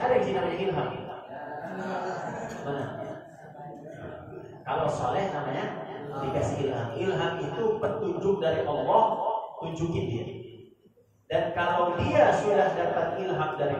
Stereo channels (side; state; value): both; identical; correlation 1.00